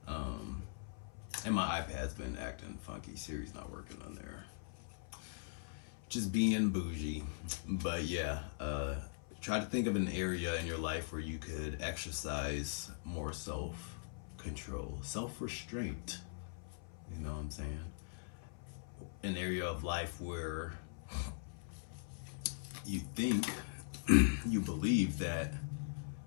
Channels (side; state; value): right; silent; 50 dB below the other